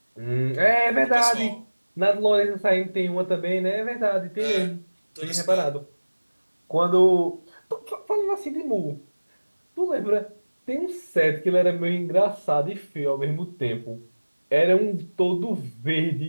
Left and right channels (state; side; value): inverted; both; correlation -1.00